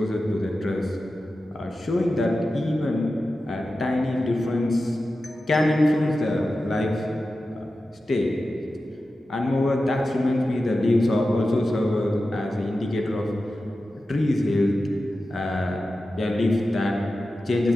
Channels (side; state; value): both; normal; correlation 0.93